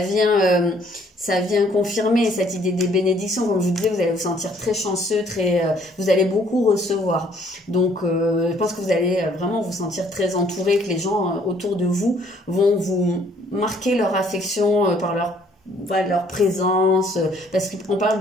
vient confirmer cette idée des bénédictions. Comme je vous disais, vous allez vous sentir très chanceux, vous allez beaucoup recevoir. Donc, je pense que vous allez vraiment vous sentir très entouré, que les gens autour de vous vont vous marquer leur affection par leur présence, parce qu'on parle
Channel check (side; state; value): both; normal; correlation 0.62